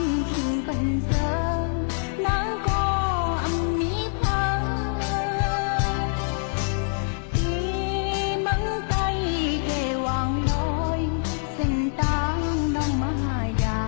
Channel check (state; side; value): silent; right; digital silence